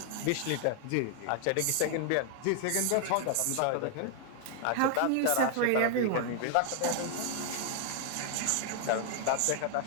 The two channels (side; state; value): both; different; correlation 0.00